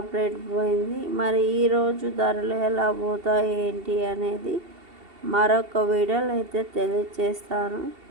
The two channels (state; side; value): late; left; 2.7 ms